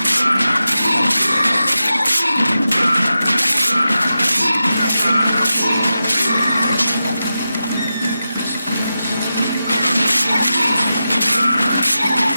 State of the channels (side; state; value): both; inverted; correlation -0.91